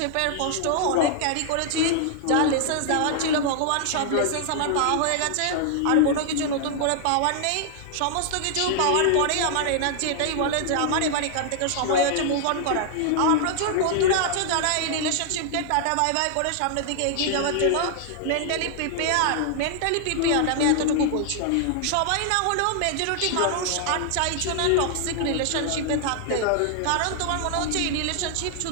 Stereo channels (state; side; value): different; both; correlation -0.01